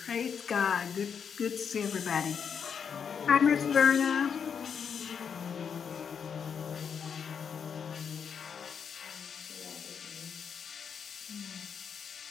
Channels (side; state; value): right; quieter; 7.0 dB